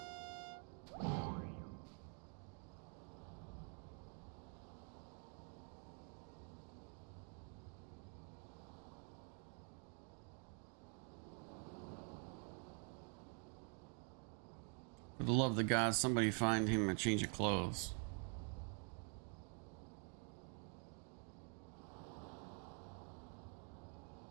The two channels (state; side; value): quieter; left; 38.5 dB